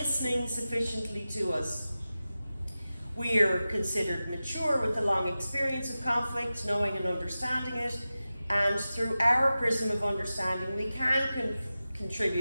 sufficiently to us. We are considered mature with a long experience of conflict, knowing and understanding it. And through our prism of understanding, we can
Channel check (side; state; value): both; inverted; correlation -0.94